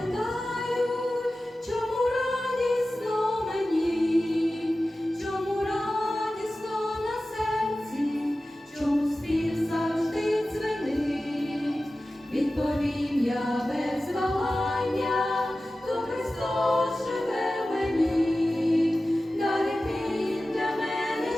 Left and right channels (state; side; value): normal; both; correlation 0.95